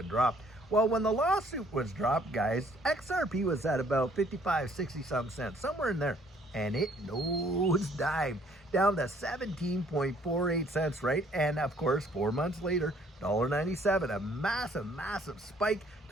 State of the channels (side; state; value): both; normal; correlation 0.61